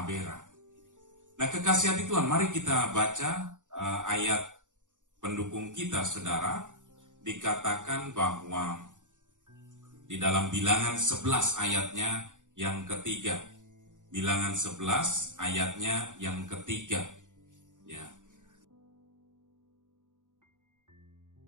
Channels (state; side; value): late; left; 0.86 ms